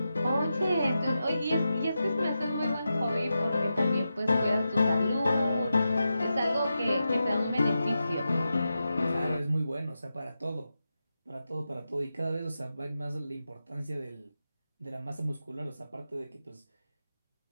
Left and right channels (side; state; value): both; inverted; correlation -0.90